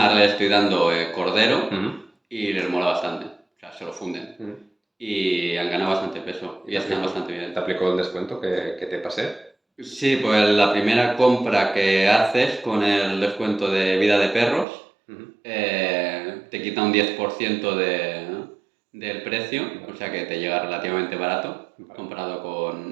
ahora le estoy dando cordero y les mola bastante. O sea, se lo funden. Y han ganado bastante peso y están bastante bien. ¿Te aplicó el descuento que te pasé? Sí, pues la primera compra que haces con el descuento de vida de perros te quita un 10% del precio, o sea que te llega relativamente barato comparado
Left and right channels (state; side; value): drops out; left; at 14.7 s